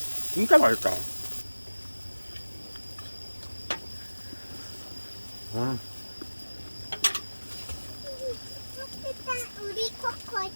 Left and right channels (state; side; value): inverted; both; correlation -1.00